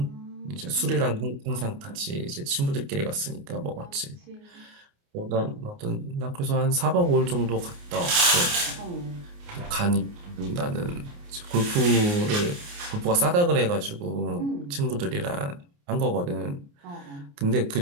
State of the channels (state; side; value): late; left; 29 ms